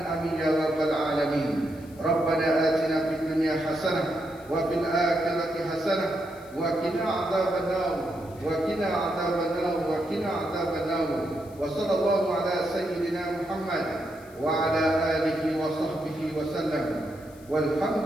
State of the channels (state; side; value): noise; left; hiss, 26 dB below the sound